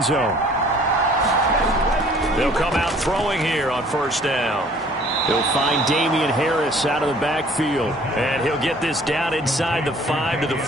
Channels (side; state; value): both; normal; correlation 0.54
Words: zone. They'll come out throwing here on first down. He'll find Damian Harris out of the backfield. And he'll get this down inside the 5 to the